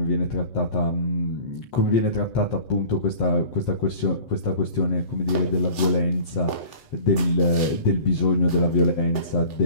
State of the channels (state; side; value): late; right; 7.8 ms